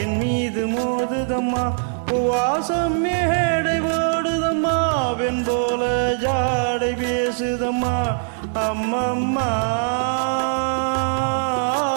என் மீது மோதுதம்மா. வாசம் மேடை ஓடுதம்மா, வெண் போல ஜாடை பேசுதம்மா. அம்மம்மா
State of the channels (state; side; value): silent; left; digital silence